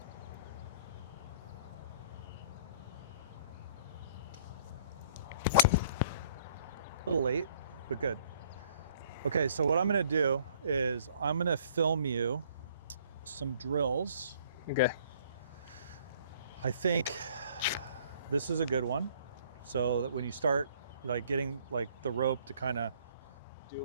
A little late, but good. Okay, so what I'm gonna do is I'm gonna film you some drills. Okay. I think this is a good one. So that when you start like getting like the rope to kind of do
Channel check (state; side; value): inverted; both; correlation -0.58